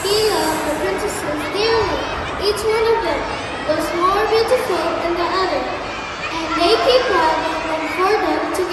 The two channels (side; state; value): both; identical; correlation 1.00